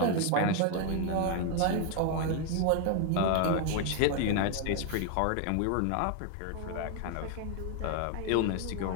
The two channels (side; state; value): both; different; correlation 0.00